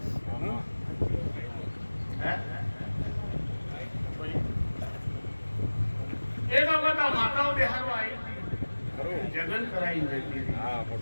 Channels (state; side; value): inverted; both; correlation -1.00